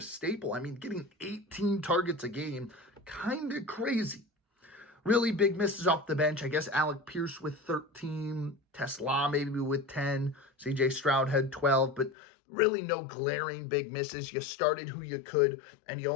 I mean, getting 18 targets a game, kind of crazy. Really big misses off the bench. I guess Alec Pierce with 13. Tesla maybe with 10. CJ Stroud had 12. But really no glaring big misses. You started who you could, and you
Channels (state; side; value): drops out; right; at 12.2 s